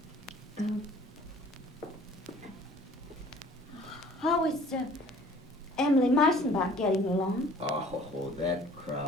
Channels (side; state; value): both; normal; correlation 0.52